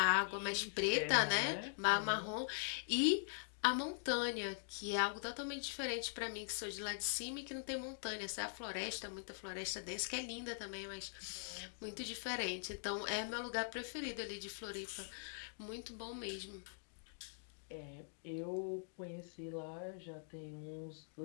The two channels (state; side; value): silent; right; digital silence